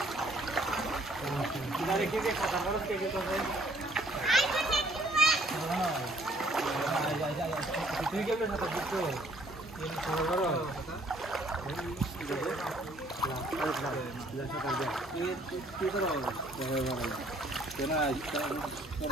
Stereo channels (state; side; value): normal; both; correlation 0.63